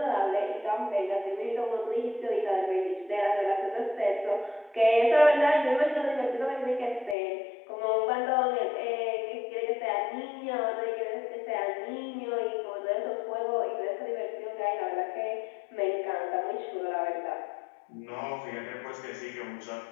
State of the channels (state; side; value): drops out; right; at 7.2 s